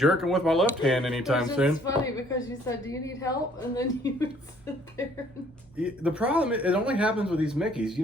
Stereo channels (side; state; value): both; normal; correlation 0.61